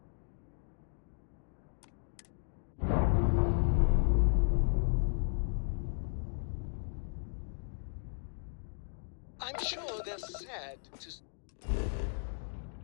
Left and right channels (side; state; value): right; silent; digital silence